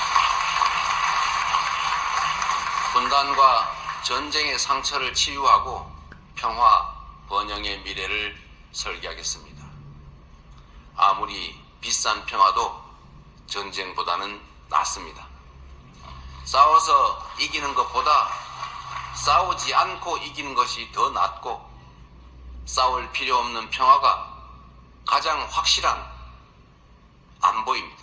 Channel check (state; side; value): identical; both; correlation 1.00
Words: 분단과 전쟁의 상처를 치유하고 평화, 번영의 미래를 설계하겠습니다. 아무리 비싼 평화도 전쟁보다는 낫습니다. 싸워서 이기는 것보다 싸우지 않고 이기는 것이 더 낫고 싸울 필요 없는 평화가 가장 확실한